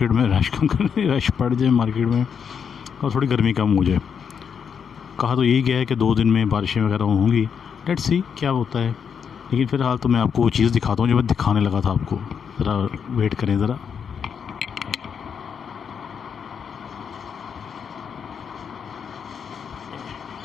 में, रश कम करने रश बढ़ जाए मार्केट में और थोड़ी गर्मी कम हो जाए। कहा तो यही गया है कि 2 दिन में बारिशें वगैरह होंगी, लेट्स सी क्या होता है। लेकिन फ़िलहाल तो मैं आपको वो चीज़ दिखाता हूँ जो मैं दिखाने लगा था आपको। ज़रा वेट करें ज़रा।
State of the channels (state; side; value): quieter; right; 7.0 dB